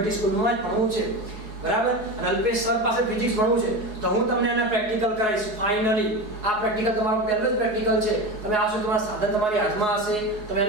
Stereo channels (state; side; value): late; left; 4.7 ms